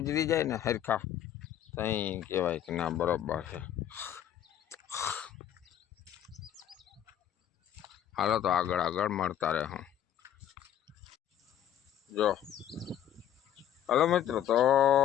જાય ને હરખા ત્યાં કહેવાય કે ના બરોબર છે. હાલો તો આગળ આગળ મળતા રહે હું જો હલો મિત્રો તો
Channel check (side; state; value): right; quieter; 10.7 dB